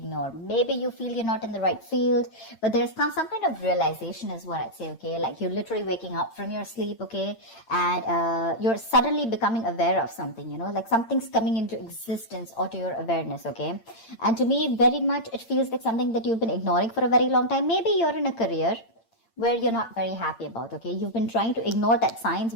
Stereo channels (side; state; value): right; late; 8.8 ms